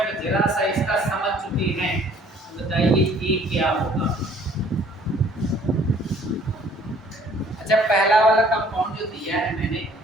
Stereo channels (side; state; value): both; normal; correlation 0.57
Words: जरा सा इसका समझ चुकी हैं तो बताइए ये क्या होगा? अच्छा पहला वाला कंपाउंड जो दिया है मैंने,